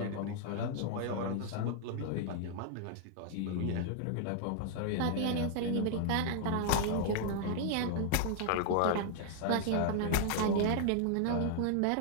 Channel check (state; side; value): different; both; correlation -0.01